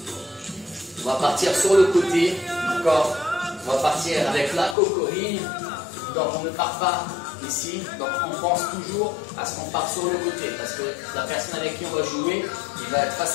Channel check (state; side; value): drops out; right; at 4.8 s